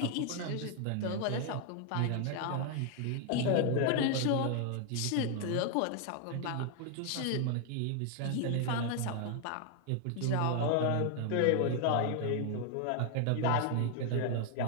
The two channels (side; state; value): both; different; correlation 0.00